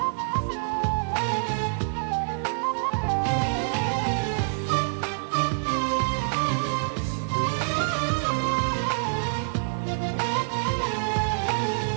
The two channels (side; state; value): left; silent; 61 dB below the other